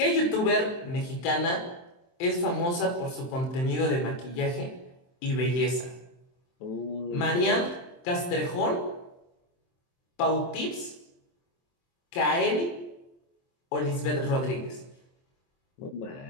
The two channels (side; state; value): right; late; 23 ms